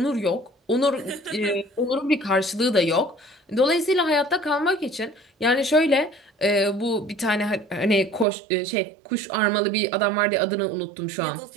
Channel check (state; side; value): drops out; left; at 8.2 s